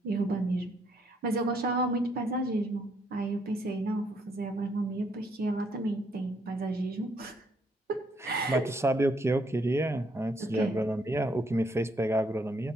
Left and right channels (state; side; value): normal; both; correlation 0.71